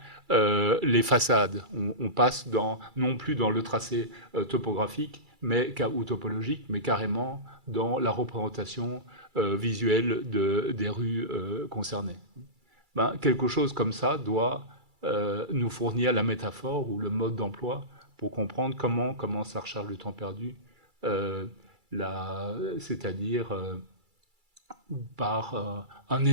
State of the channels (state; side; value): late; left; 2.3 ms